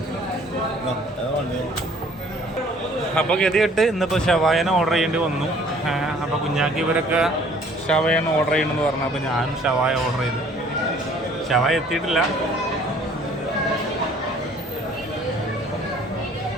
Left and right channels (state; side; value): normal; both; correlation 0.56